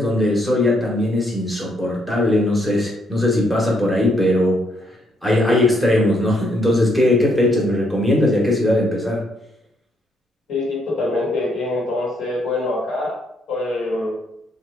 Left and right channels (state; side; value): normal; both; correlation 0.73